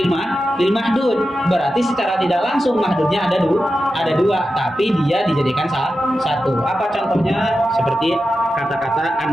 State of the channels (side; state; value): both; normal; correlation 0.91